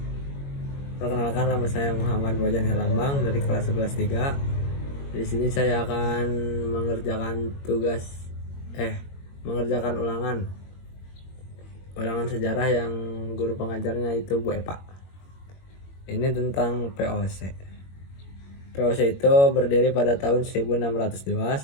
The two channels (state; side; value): late; right; 21 ms